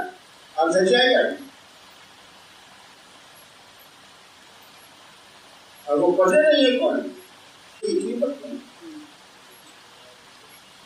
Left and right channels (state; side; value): identical; both; correlation 1.00